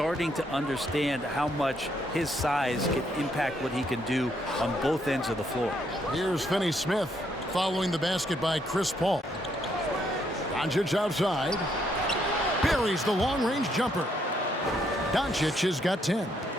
to understand how much his size can impact what he can do on both ends of the floor. Here's Finney-Smith following the basket by Chris Paul. Doncic outside. Buries the long-range jumper. Doncic has got 10.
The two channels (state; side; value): normal; both; correlation 0.73